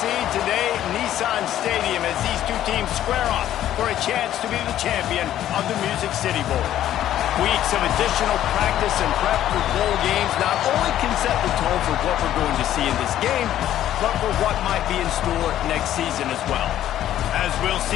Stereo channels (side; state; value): right; quieter; 12.1 dB